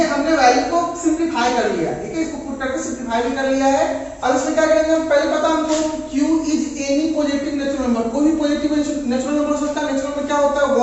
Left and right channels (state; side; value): identical; both; correlation 1.00